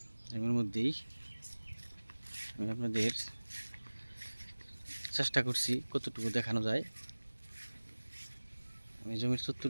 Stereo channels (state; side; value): inverted; both; correlation -1.00